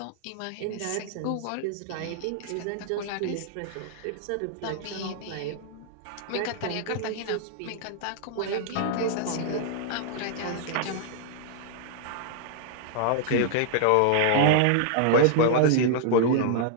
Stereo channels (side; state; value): both; different; correlation -0.01